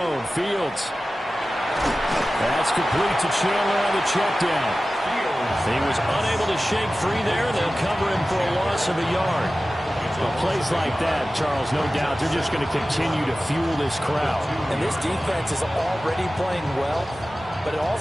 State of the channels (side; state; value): both; normal; correlation 0.96